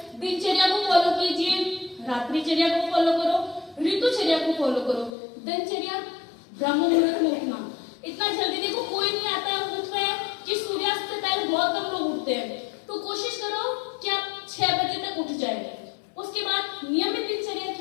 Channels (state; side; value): drops out; right; at 5.2 s